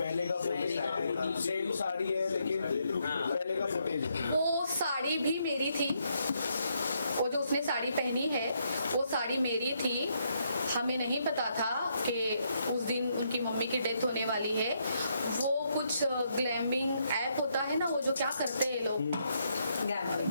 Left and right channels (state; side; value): inverted; both; correlation -0.76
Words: का फुटेज, सेम साड़ी है लेकिन पहले का फुटेज है। वो साड़ी भी मेरी थी, वो जो उसने साड़ी पहनी है वो साड़ी मेरी थी। हमें नहीं पता था कि उस दिन उनकी मम्मी की डेथ होने वाली है। वो कुछ ग्लैमिंग ऐप होता है ना, वो जो क्या करते हैं लोग,